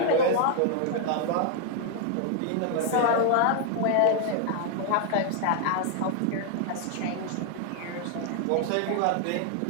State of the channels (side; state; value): both; different; correlation 0.00